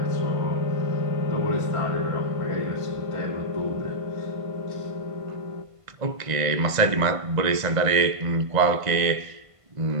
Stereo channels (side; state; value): left; late; 1.5 ms